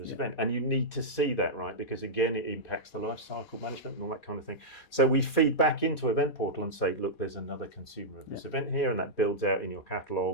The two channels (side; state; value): right; late; 4.2 ms